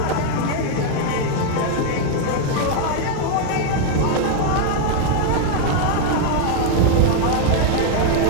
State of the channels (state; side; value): different; both; correlation 0.00